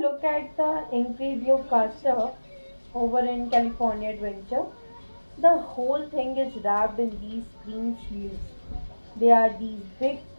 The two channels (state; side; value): inverted; both; correlation -1.00